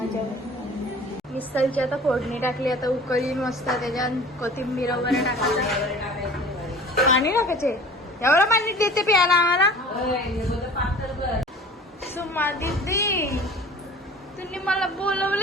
मिसळची आता फोडणी टाकली, आता उकळी मस्त त्याच्यात कोथिंबीर वगैरे टाकायची. पाणी टाकायचे एवढं पाणी देते प्यायला आम्हाला. सुमा दीदी तुम्ही मला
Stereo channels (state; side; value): normal; both; correlation 0.44